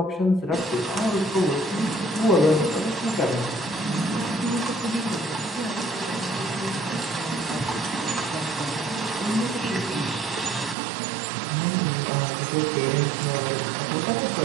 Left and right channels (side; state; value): left; drops out; at 10.8 s